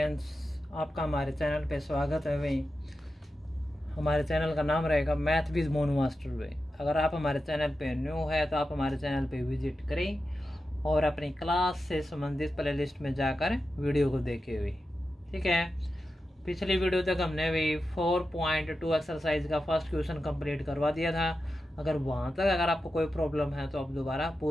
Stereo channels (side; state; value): both; normal; correlation 0.91